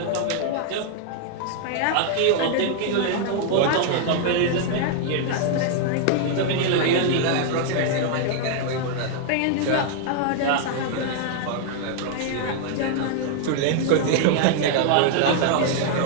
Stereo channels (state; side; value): different; both; correlation 0.00